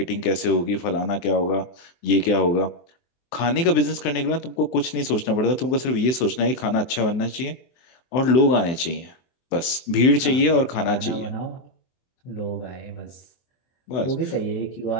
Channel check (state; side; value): late; right; 23 ms